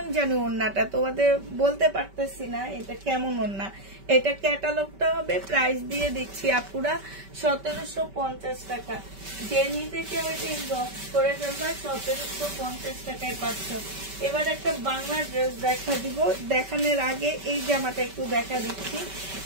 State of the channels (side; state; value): left; late; 5.2 ms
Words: জানি ওড়নাটা তোমাদের বলতে পারতেছি না এটা কেমন ওড়না। এটা ক্যাটালগটা হবে, প্রাইস দিয়ে দিচ্ছি আপুরা 1750 টাকা। যে নিতে কেউ এটা ইনবক্স করে ফেলবা, 1750 টাকায় পাচ্ছ। এবার একটা বাংলা ড্রেস দেখা দিব, দেখানোর আগে এই জামাটা একটু দেখা দিচ্ছি।